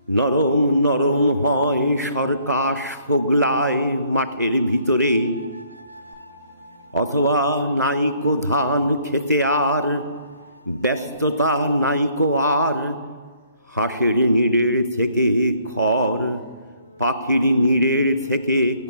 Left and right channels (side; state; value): both; inverted; correlation -0.64